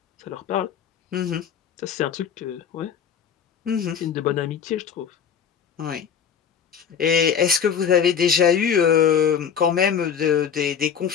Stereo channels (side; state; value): right; quieter; 7.6 dB